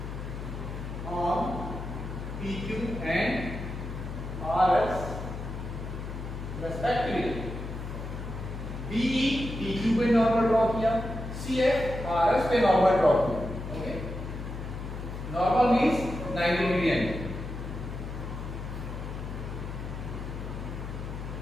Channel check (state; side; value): noise; left; hum, 7 dB below the sound